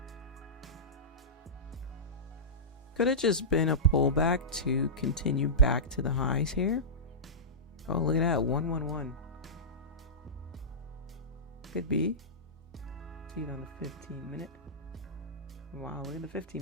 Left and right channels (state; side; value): normal; both; correlation -0.15